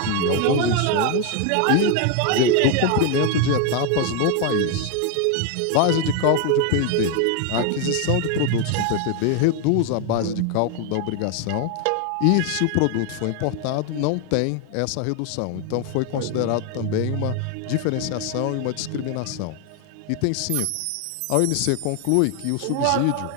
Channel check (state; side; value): different; both; correlation 0.01